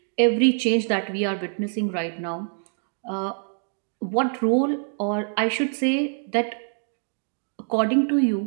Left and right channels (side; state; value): left; silent; 62 dB below the other